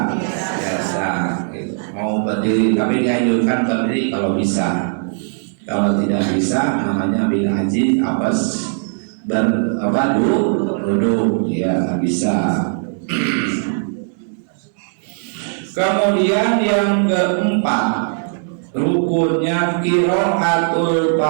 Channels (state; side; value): silent; left; digital silence